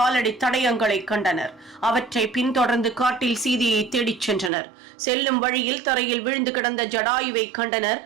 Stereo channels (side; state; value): left; drops out; at 4.5 s